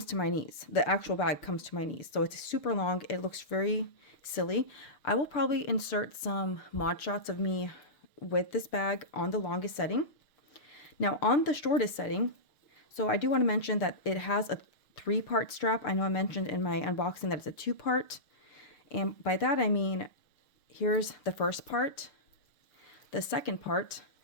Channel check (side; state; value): right; late; 6.8 ms